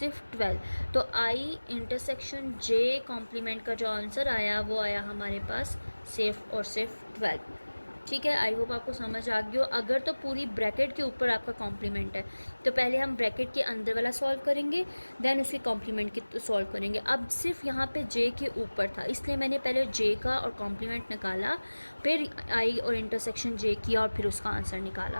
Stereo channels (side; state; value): both; inverted; correlation -1.00